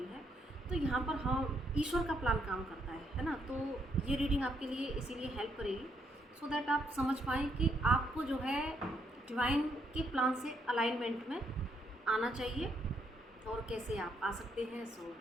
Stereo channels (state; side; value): normal; both; correlation 0.75